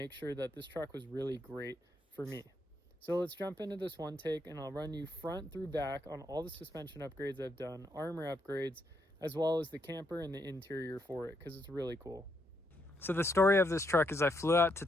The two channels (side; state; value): both; normal; correlation 0.77